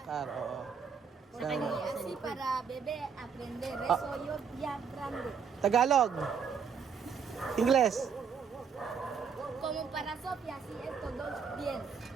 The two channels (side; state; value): left; quieter; 6.4 dB